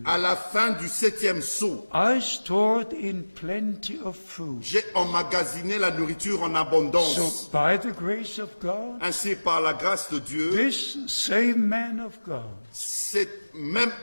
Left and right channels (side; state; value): both; inverted; correlation -1.00